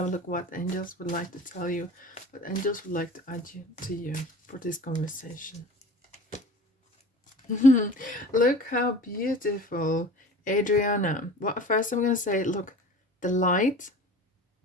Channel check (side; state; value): both; normal; correlation 0.39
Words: a look what angels would like to tell you, what angels would like to add to you for this conversation. Look how beautiful. Adriana. Well, first I'm going to say, look, the light